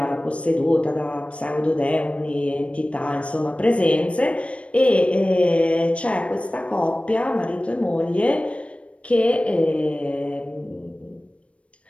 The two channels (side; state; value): right; late; 0.062 ms